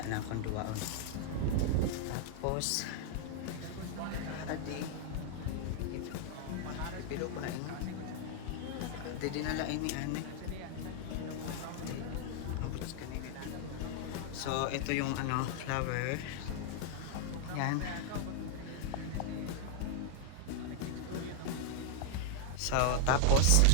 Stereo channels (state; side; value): different; both; correlation 0.00